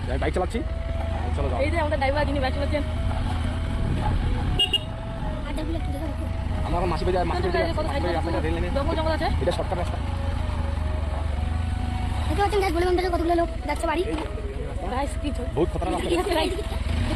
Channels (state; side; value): identical; both; correlation 1.00